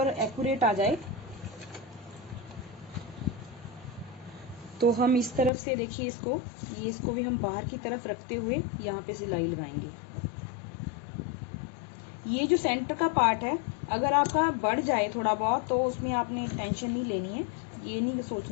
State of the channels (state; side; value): drops out; right; at 5.5 s